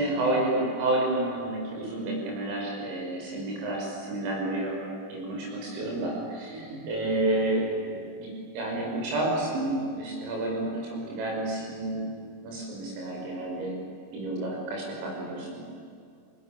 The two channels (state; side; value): late; left; 26 ms